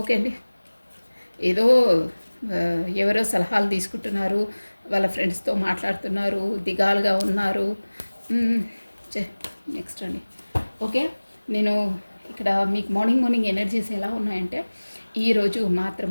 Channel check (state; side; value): inverted; both; correlation -1.00